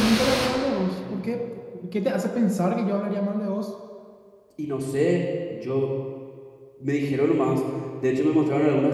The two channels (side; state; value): both; identical; correlation 1.00